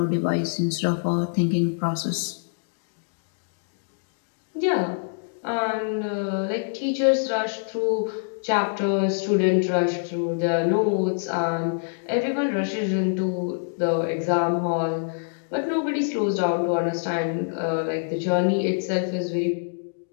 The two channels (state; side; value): silent; right; digital silence